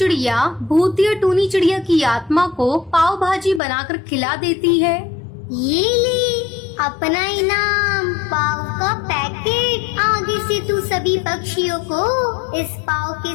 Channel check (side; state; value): right; drops out; at 3.6 s